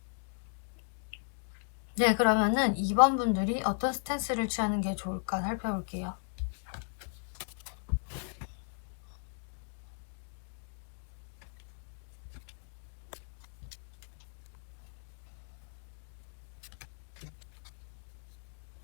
네, 그러면은 2번 분들이 어떤 스탠스를 취하는 게 좋을까 살펴볼게요.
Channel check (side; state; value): right; silent; 54 dB below the other